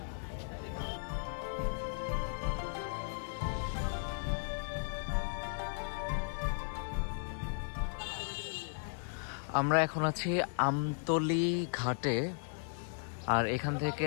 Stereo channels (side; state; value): right; silent; digital silence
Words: আমরা এখন আছি আমতলি ঘাটে, আর এখান থেকে